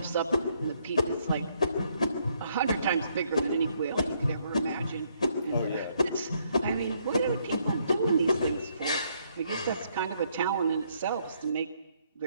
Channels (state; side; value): inverted; both; correlation -0.71